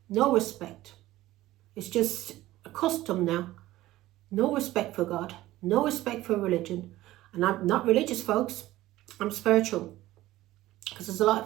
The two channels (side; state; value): left; quieter; 16.2 dB